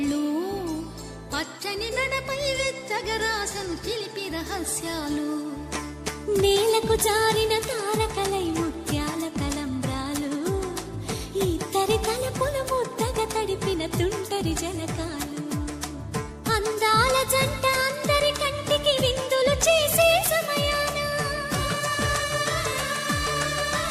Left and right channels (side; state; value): both; identical; correlation 1.00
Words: పచ్చని నడపై వెచ్చగరాసను చిలిపి రహస్యాలు నేలకు జారిన తారకలై ముత్యాల తలంబ్రాలు ఇద్దరి తలపులు ముద్దగా తడిపిన తుంటరి జలకాలు అందాల జంట అందరి కంటికి విందులు చేసే సమయాన